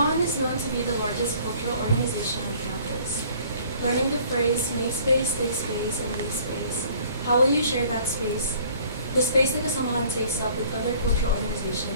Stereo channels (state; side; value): inverted; both; correlation -0.55